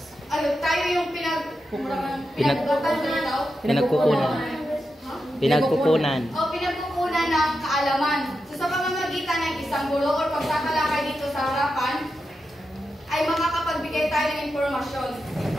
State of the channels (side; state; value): both; normal; correlation 0.88